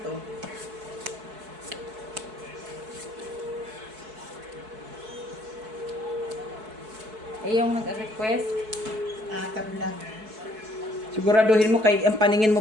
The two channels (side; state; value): left; late; 4.6 ms